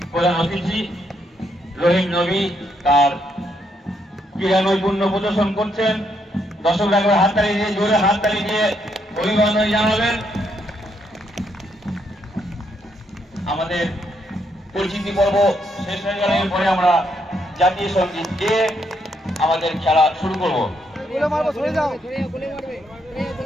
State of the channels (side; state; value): both; normal; correlation 0.75